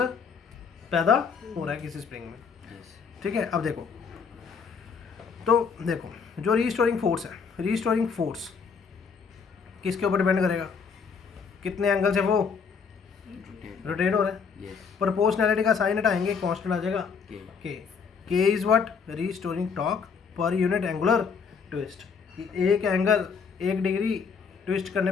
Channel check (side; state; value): right; quieter; 5.8 dB